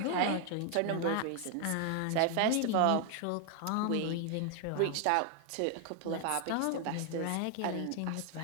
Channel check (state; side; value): different; both; correlation 0.00